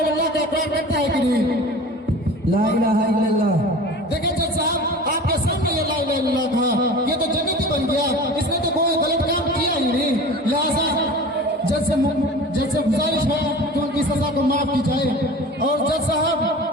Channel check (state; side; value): normal; both; correlation 0.38